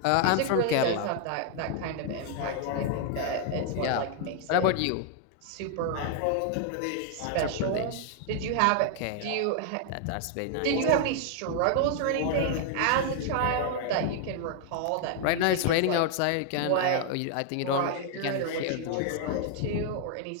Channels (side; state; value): both; different; correlation 0.00